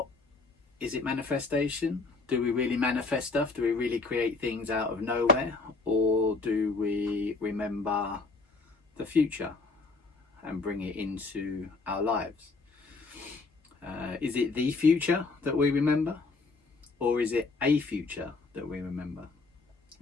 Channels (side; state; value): right; quieter; 3.9 dB